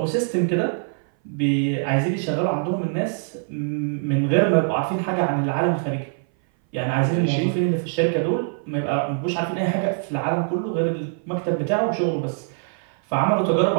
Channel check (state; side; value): silent; left; 59 dB below the other